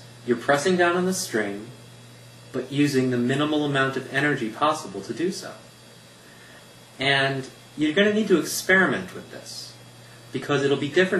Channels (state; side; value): identical; both; correlation 1.00